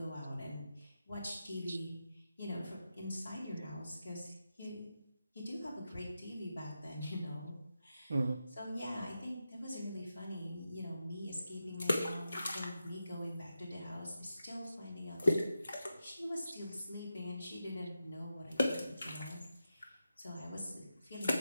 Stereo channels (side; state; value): both; inverted; correlation -0.89